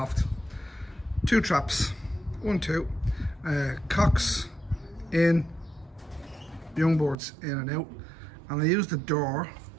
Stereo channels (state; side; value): drops out; left; at 7.2 s